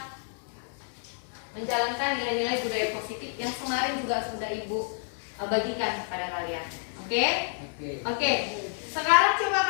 menjalankan nilai-nilai budaya positif yang kemarin juga sudah Ibu bagikan kepada kalian. Oke? Oke. Sekarang coba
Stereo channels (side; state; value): right; silent; 59 dB below the other